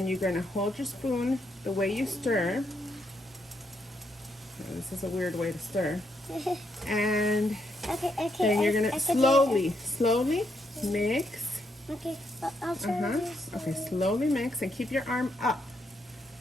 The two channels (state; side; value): normal; both; correlation 0.77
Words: you're gonna hold your spoon the way you stir. This is a weird way to stir. And then you're gonna slowly mix. Okay, I'll try this. Okay, slowly mix and keep your arm up.